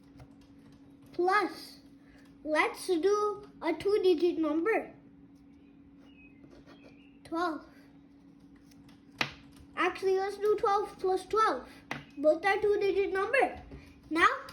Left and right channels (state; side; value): identical; both; correlation 1.00